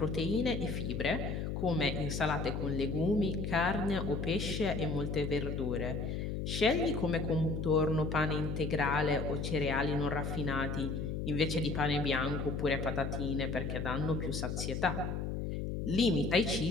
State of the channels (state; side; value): noise; left; hum, 3 dB below the sound